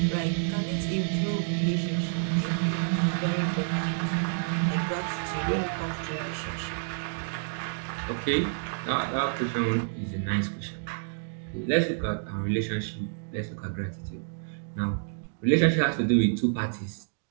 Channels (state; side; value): silent; left; digital silence